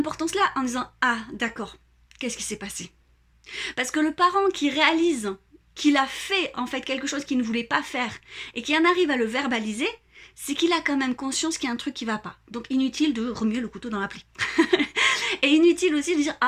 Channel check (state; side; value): identical; both; correlation 1.00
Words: en disant, ah, d'accord, qu'est-ce qui s'est passé? Parce que le parent qui réalise qu'il a fait, en fait, quelque chose qu'il ne voulait pas faire et qui en arrive à le verbaliser, c'est qu'il a quand même conscience qu'il y a un truc qui va pas. Donc inutile de remuer le couteau dans la plaie. Et inutile aussi de dire